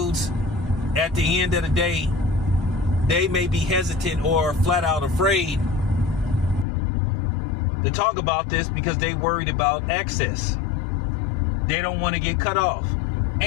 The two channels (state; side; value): drops out; right; at 6.7 s